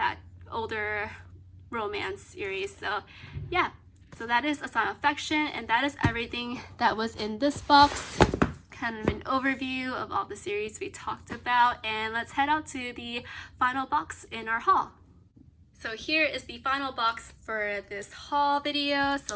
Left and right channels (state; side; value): identical; both; correlation 1.00